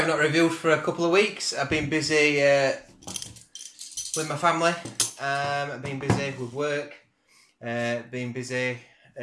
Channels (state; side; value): identical; both; correlation 1.00